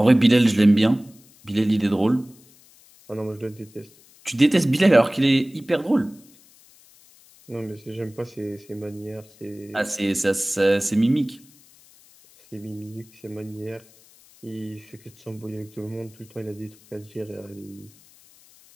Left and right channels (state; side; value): noise; left; hiss, 27 dB below the sound